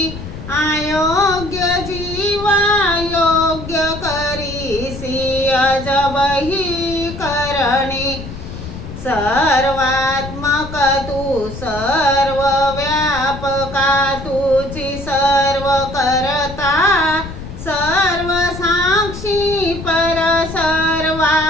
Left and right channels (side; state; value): left; noise; rumble, 10 dB below the sound